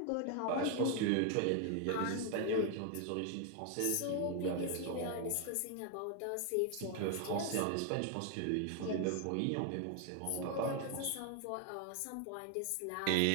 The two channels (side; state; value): both; different; correlation 0.00